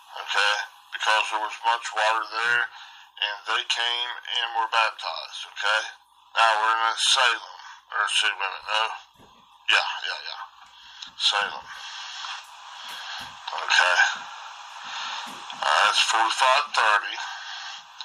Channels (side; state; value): both; identical; correlation 1.00